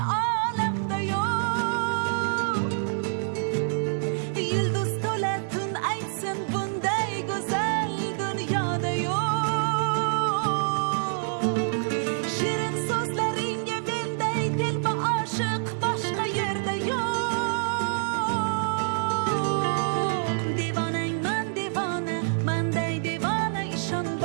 olamda yo'q. Yulduz to'la tun aytsin, bunday go'zal dunyoda yo'q. Shirin so'zlaringga menday telba oshiq boshqa yerda yo'q. Devonangman devona, manday devona, ishon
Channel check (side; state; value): left; silent; digital silence